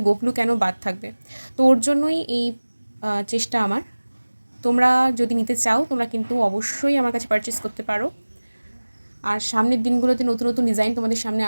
গোপলু কেন বাদ থাকবে, তো ওর জন্যই এই চেষ্টা আমার। তোমরা যদি নিতে চাও তোমরা কিন্তু অবশ্যই আমার কাছে পারচেস করতে পারো। আর সামনের দিনগুলোতে নতুন নতুন ডিজাইন তোমাদের সামনে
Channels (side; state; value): both; inverted; correlation -1.00